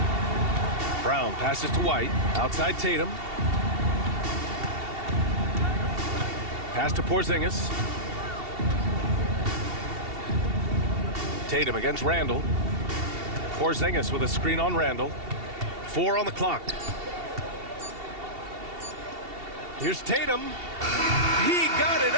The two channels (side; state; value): left; late; 2.7 ms